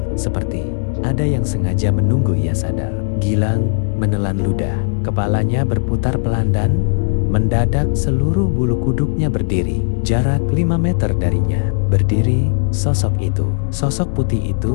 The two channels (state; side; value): silent; right; digital silence